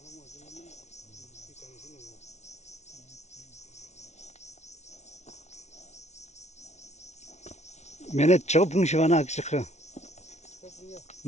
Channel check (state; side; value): late; right; 0.32 ms